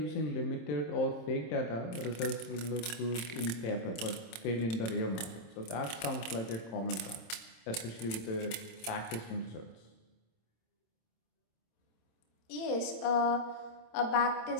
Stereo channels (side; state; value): right; late; 26 ms